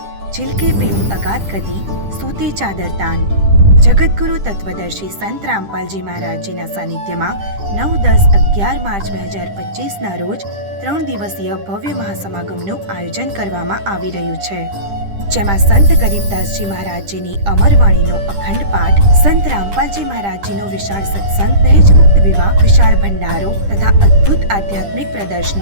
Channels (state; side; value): late; left; 10 ms